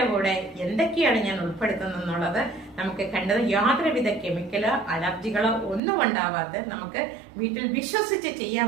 കൂടെ എന്തൊക്കെയാണ് ഞാൻ ഉൾപ്പെടുത്തുന്നത് എന്നുള്ളത് നമുക്ക് കണ്ടത് യാതൊരുവിധ കെമിക്കലോ അലർജികളോ ഒന്നും ഉണ്ടാവാത്ത നമുക്ക് വീട്ടിൽ വിശ്വസിച്ച് ചെയ്യാൻ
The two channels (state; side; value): drops out; left; at 5.8 s